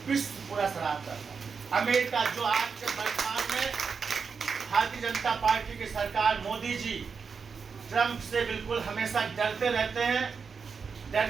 विश्व पूरा सराहता था। अमेरिका जो आज के वर्तमान में भारतीय जनता पार्टी की सरकार, मोदी जी ट्रंप से बिल्कुल हमेशा डरते रहते हैं, डर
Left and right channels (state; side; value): quieter; left; 5.6 dB